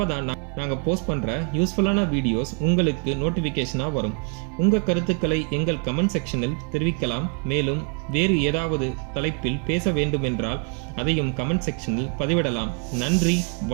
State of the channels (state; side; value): quieter; left; 35.2 dB